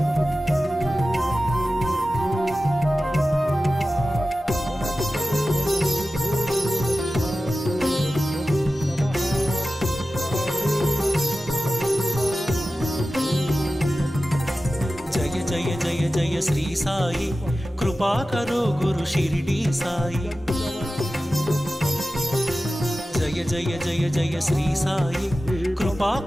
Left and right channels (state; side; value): normal; both; correlation 0.95